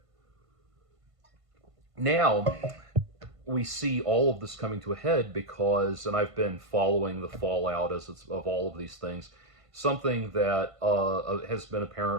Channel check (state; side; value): late; left; 1.5 ms